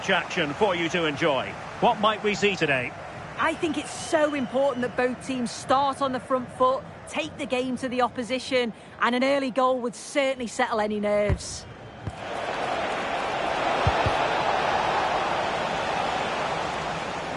action for you to enjoy. What might we see today? I think it's so important that both teams start on the front foot, take the game to the opposition, and an early goal would certainly settle any nerves.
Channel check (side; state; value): both; identical; correlation 1.00